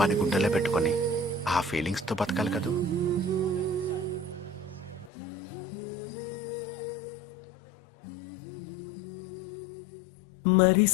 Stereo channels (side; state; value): right; drops out; at 5.1 s